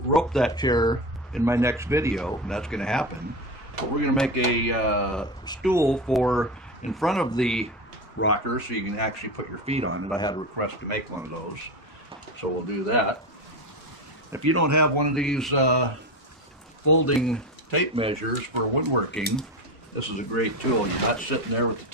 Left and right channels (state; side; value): normal; both; correlation 0.21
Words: rope that chair in my next video, and that's going to happen. But we're going to make a stool for in front of the rocker so you can actually put your feet on it. I had a request to make one of those, so we'll do that. If you don't have one of these folding tape measures for woodworking, this is a great tool. You're not sitting there with the